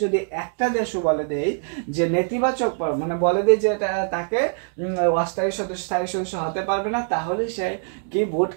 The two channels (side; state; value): left; silent; digital silence